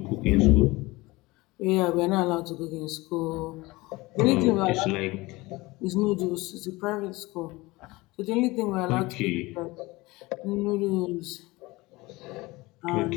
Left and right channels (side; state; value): right; quieter; 21.7 dB